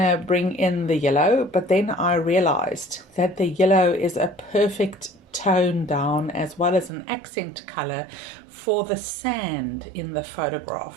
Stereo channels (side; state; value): left; drops out; at 6.9 s